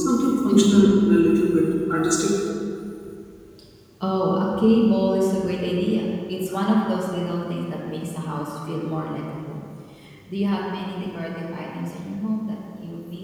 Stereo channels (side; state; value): both; identical; correlation 1.00